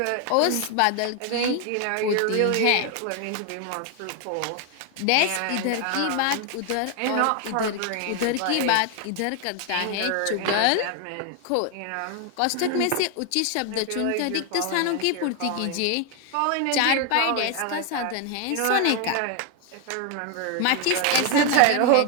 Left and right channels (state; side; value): different; both; correlation 0.01